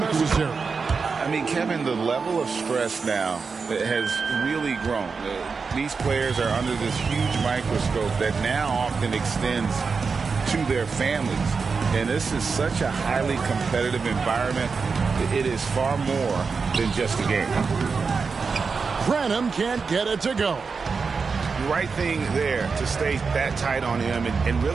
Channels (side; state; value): left; quieter; 5.0 dB